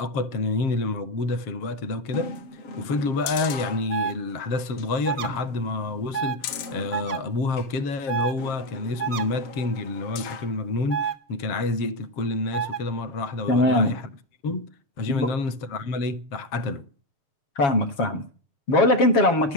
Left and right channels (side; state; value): right; late; 7.6 ms